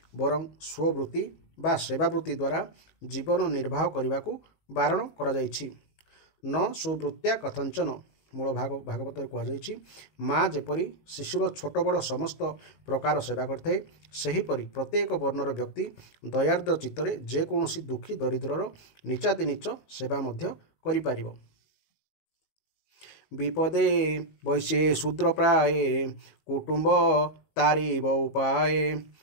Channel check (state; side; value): late; right; 19 ms